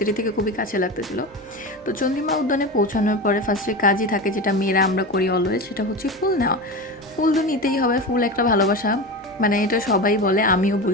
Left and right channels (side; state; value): both; normal; correlation 0.25